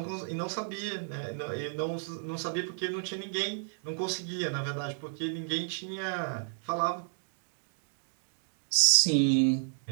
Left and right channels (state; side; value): silent; left; digital silence